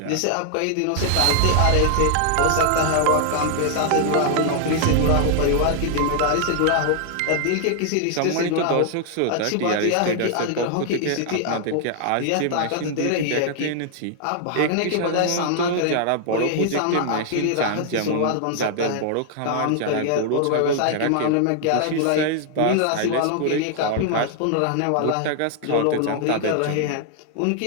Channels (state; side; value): different; both; correlation 0.00